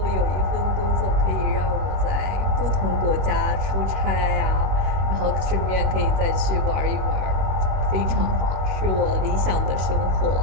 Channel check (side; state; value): left; late; 21 ms